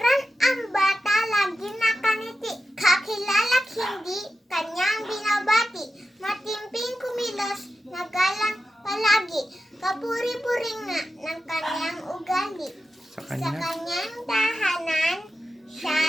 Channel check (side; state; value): both; normal; correlation 0.91